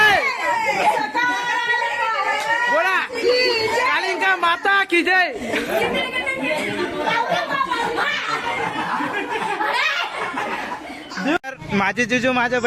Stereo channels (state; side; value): identical; both; correlation 1.00